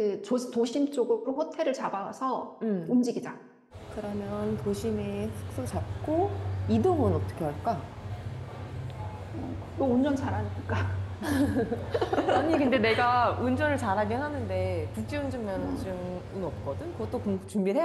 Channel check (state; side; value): identical; both; correlation 1.00